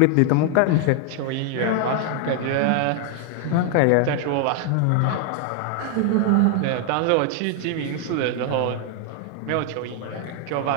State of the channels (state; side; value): different; both; correlation 0.00